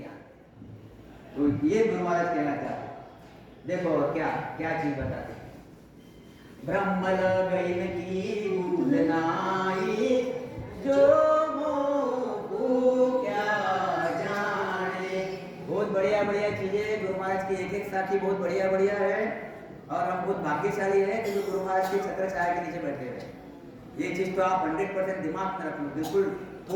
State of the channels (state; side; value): identical; both; correlation 1.00